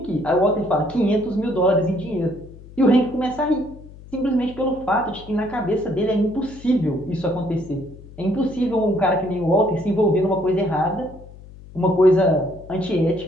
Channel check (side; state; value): left; noise; hum, 19 dB below the sound